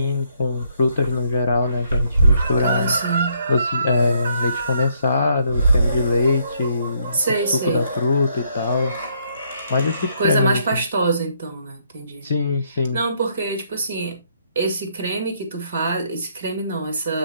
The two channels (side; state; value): both; inverted; correlation -0.70